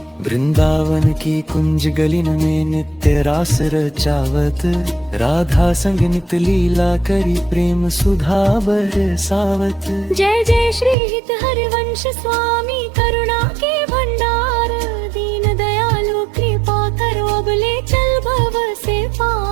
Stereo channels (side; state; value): left; drops out; at 11.0 s